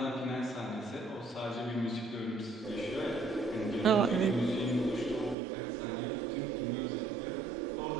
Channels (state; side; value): drops out; left; at 5.4 s